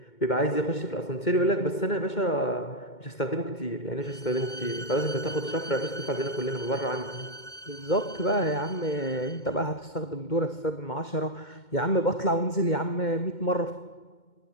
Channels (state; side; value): late; right; 2.2 ms